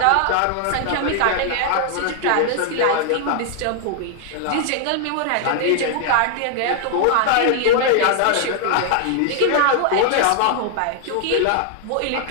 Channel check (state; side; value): different; both; correlation 0.00